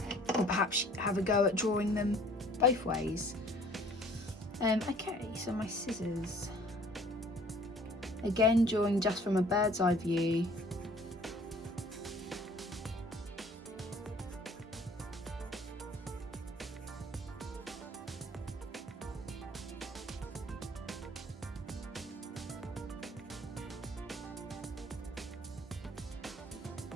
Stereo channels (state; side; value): normal; both; correlation 0.54